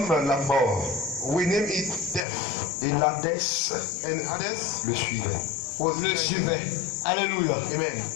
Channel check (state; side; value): drops out; right; at 2.2 s